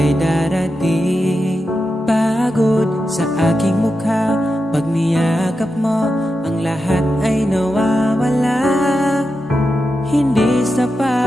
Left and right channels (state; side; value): normal; both; correlation 0.89